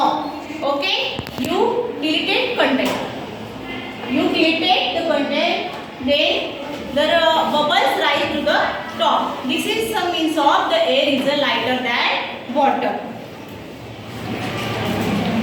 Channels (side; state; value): both; identical; correlation 1.00